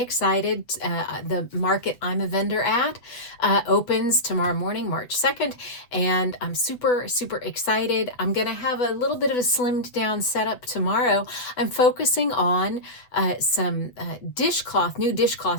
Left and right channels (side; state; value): right; late; 8.0 ms